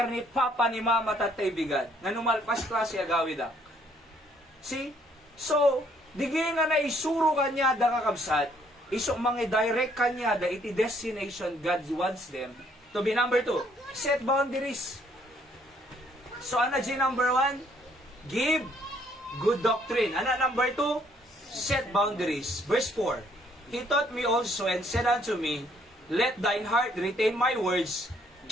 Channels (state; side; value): normal; both; correlation 0.66